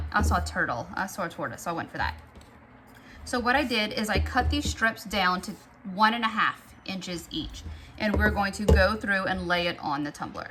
I saw a turtle. I saw a tortoise, so I went for that. So what I did is I cut these strips down to 1.5 inches each, and we're going to go through and lay it on the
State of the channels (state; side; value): identical; both; correlation 1.00